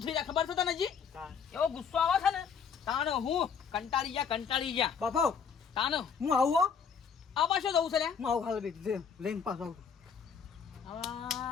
થઈ જાય ખબર છે તને જી એવો ગુસ્સો આવે છે ને તાને હું કંટાળી જા બાપા તાને હું આવું આવા શું જવું છે લ્યા હું આવું ખાલી લઈને પાછો આવું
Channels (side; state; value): right; quieter; 6.6 dB